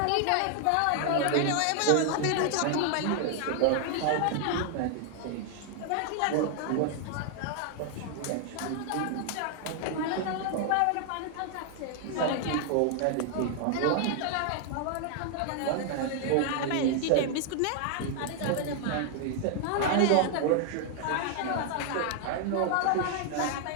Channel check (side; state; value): both; different; correlation 0.00